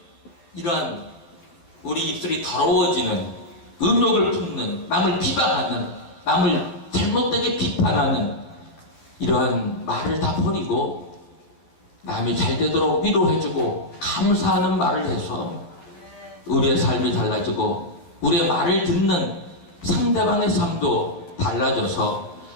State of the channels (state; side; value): late; right; 12 ms